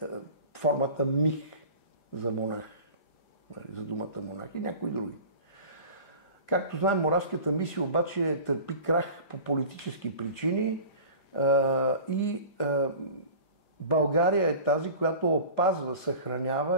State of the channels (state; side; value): late; right; 5.0 ms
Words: формата мих за монах, за думата монах и някои други. Както знаем, Моравската мисия обаче търпи крах по политически причини и България е тази, която опазва,